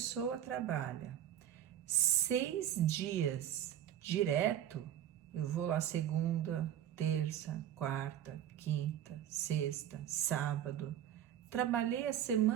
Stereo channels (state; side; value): quieter; left; 10.8 dB